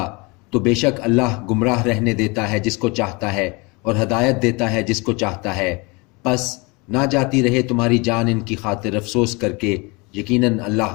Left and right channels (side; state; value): right; quieter; 27.4 dB